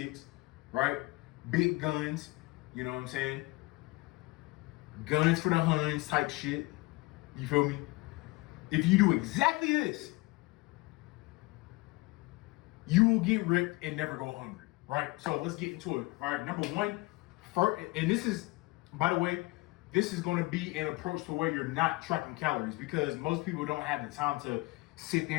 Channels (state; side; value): quieter; right; 22.6 dB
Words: right? Big guns, you know what I'm saying? Guns for the Huns type shit. You feel me? If you do exactly this, you will get ripped and never go hungry, right? So let's get into it. All right, number one, first, and this is, by the way, this is going to be an approach to where you're not tracking calories, because most people don't have the time to sit